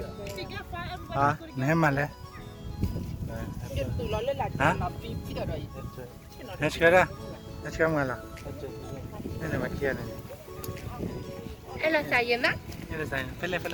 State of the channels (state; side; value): identical; both; correlation 1.00